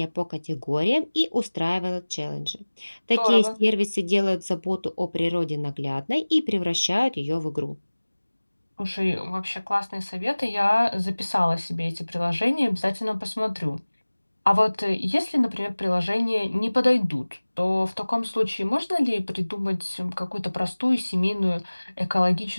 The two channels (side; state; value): both; inverted; correlation -1.00